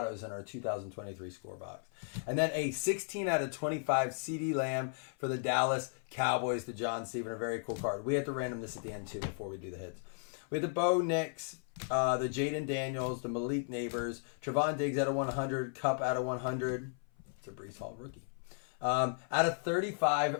in our 2023 score box. And then a 16 out of 25 CeeDee Lamb for the Dallas Cowboys to John Steven. A very cool card. We have to random this at the end too before we do the hits. We had the Bo Nix, the Jaden Daniels, the Malik Neighbors, Trevon Diggs out of 100, Cup out of 100. It's a Breece Hall rookie. Out of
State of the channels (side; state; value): right; silent; 54 dB below the other